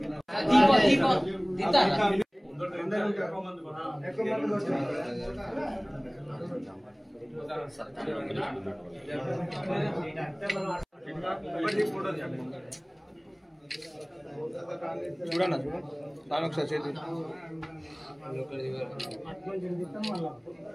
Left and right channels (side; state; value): both; identical; correlation 1.00